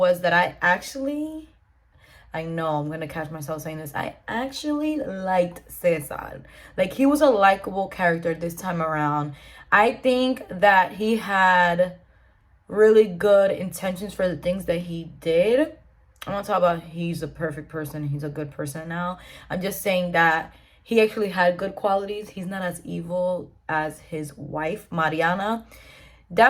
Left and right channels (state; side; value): identical; both; correlation 1.00